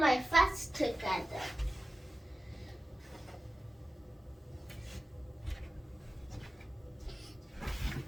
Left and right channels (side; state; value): both; normal; correlation 0.94